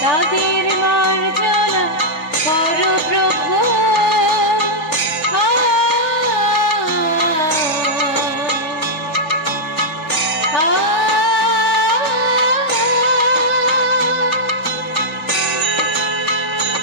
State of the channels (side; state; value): right; late; 3.5 ms